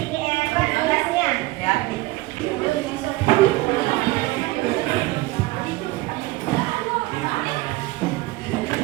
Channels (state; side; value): quieter; left; 20.3 dB